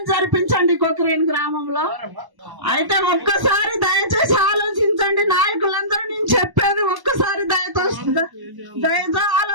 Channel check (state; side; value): late; left; 1.1 ms